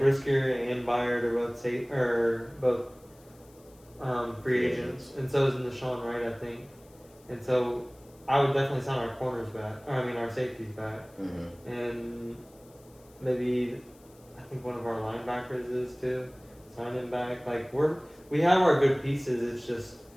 and Byard are both free agents, and so is Nashawn Wright, I think. And so I would definitely sign our corners back, our safeties back, and maybe I think one of our linebackers is too. Sign him back. Like we have our good pieces. It's just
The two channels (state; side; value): noise; left; hiss, 28 dB below the sound